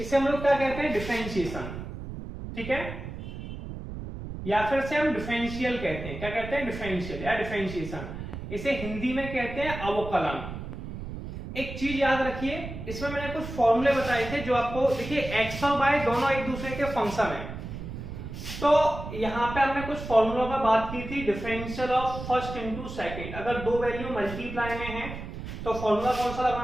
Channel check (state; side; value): noise; right; rumble, 9 dB below the sound